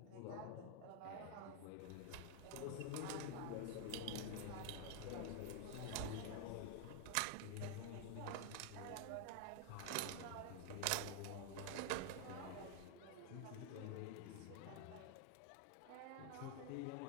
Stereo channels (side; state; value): both; different; correlation 0.00